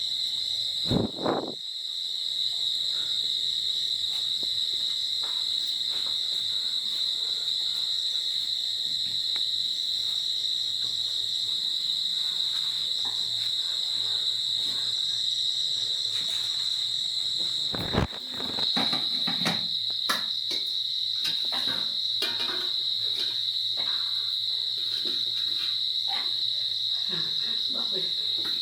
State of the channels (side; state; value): both; identical; correlation 1.00